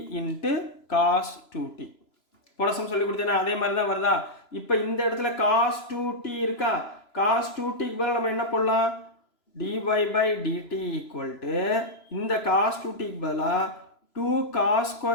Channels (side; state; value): right; late; 3.0 ms